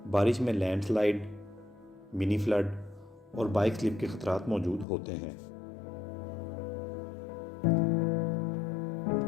बारिश में लैंडस्लाइड, मिनी फ्लड और बाइक स्लिप के खतरात मौजूद होते हैं।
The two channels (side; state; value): right; drops out; at 4.9 s